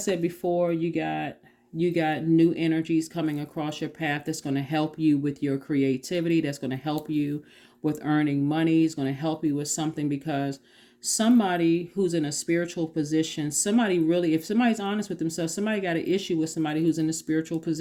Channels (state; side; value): identical; both; correlation 1.00